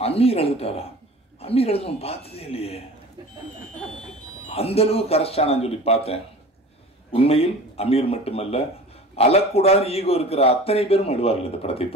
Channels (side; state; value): both; normal; correlation 0.40